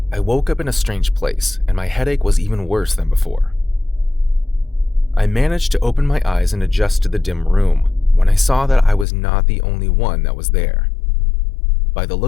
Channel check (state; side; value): drops out; right; at 9.1 s